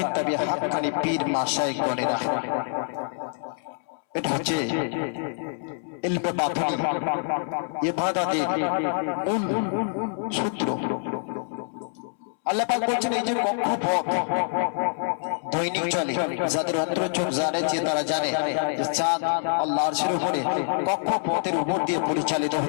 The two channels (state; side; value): silent; right; 61 dB below the other